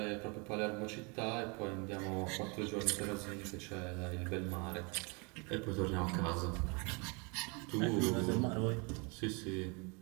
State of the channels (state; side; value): quieter; left; 31.6 dB